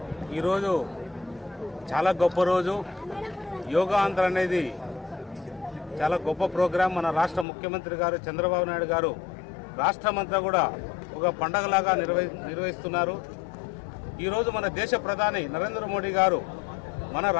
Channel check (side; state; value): right; drops out; at 7.5 s